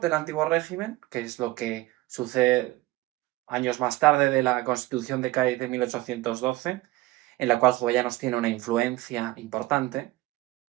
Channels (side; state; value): left; quieter; 18.6 dB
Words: antiguo régimen, que es lo que sucede años más tarde de la Constitución de Cádiz de 1812, en la cual Jovellanos tiene una influencia importante.